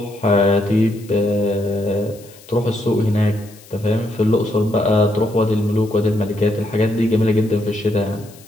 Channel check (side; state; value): left; noise; hiss, 24 dB below the sound